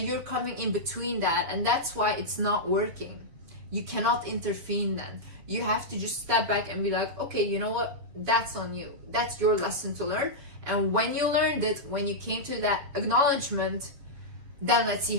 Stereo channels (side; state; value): left; late; 7.3 ms